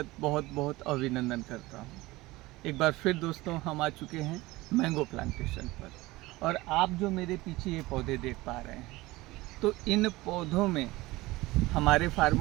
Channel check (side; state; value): left; quieter; 20.0 dB